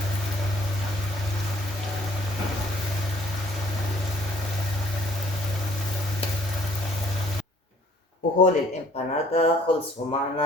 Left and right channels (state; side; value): normal; both; correlation 0.58